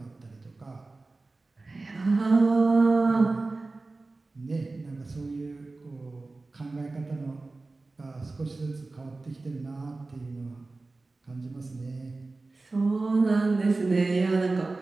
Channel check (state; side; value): quieter; left; 3.4 dB